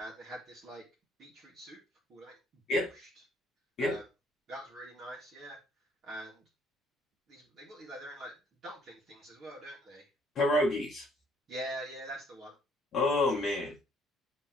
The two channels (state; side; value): normal; both; correlation 0.63